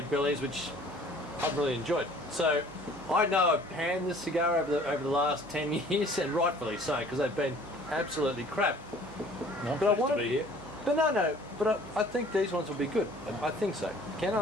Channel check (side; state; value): right; noise; hum, 19 dB below the sound